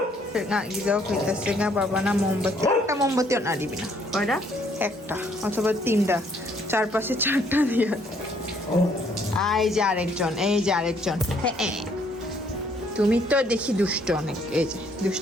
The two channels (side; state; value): both; normal; correlation 0.66